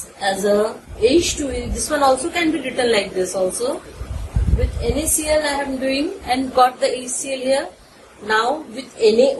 as a H2. This one also can be written like this also. With NaCl I am doing and got the HCl here. Now with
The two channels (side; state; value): both; identical; correlation 1.00